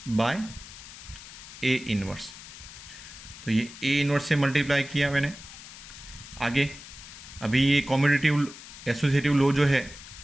bye A inverse, तो ये A इन्वर्स से मल्टीप्लाई किया मैंने। आगे अभी ये कॉम्यूटेटिव एसोसिएटिव लॉ जो है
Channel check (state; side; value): noise; left; hiss, 15 dB below the sound